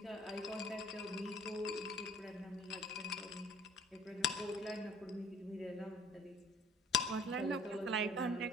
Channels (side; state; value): both; normal; correlation 0.53